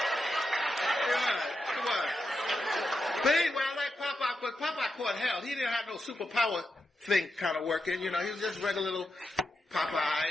What? But anyway, I like Popeye, but Popeye caught hell. He didn't have no superpower thing kind of working. You know, he was just regular little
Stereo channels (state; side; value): normal; both; correlation 0.87